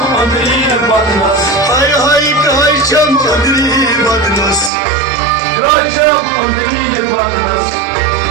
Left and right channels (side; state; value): left; drops out; at 4.7 s